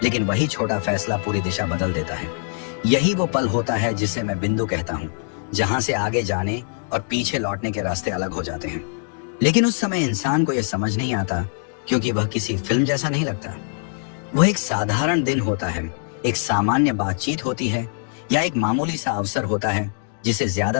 लेकिन वही छोटा फैसला पूरी दिशा बदल देता है। यही वो पल होता है जिसे मैं बिंदु कहता हूँ, जहाँ से आगे जाने और पीछे लौटने के रास्ते अलग हो जाते हैं। लेकिन उस समय इंसान को यह समझ नहीं आता, क्योंकि वह किसी फिल्म जैसा नहीं लगता। वह एक साधारण दिन होता है, एक सामान्य बातचीत होती है, या एक मामूली सा अवसर होता है जिसे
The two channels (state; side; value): silent; right; digital silence